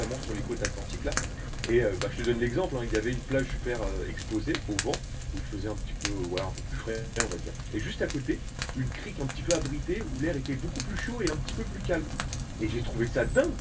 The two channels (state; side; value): identical; both; correlation 1.00